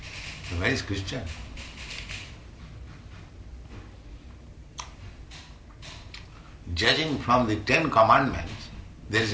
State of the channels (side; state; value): both; identical; correlation 1.00